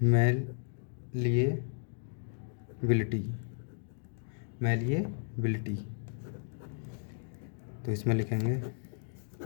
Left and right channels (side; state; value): right; silent; digital silence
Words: मैलिएबिलिटी। तो इसमें लिखेंगे